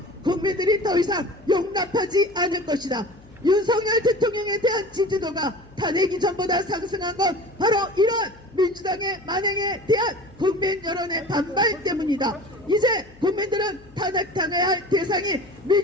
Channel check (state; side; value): noise; left; hum, 25 dB below the sound